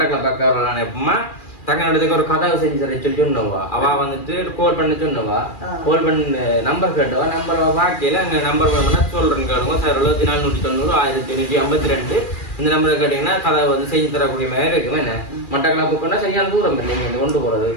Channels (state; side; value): late; right; 2.4 ms